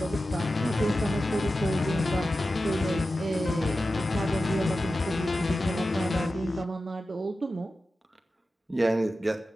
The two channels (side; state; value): both; normal; correlation 0.93